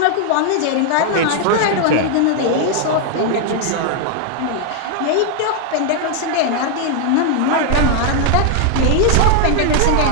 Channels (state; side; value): different; both; correlation 0.00